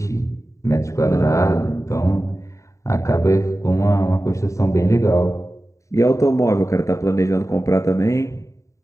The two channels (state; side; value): late; right; 0.15 ms